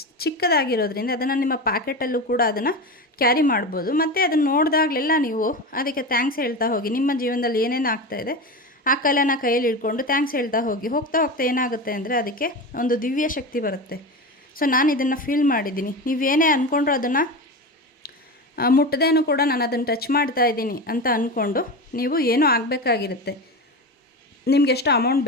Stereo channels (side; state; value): both; normal; correlation 0.23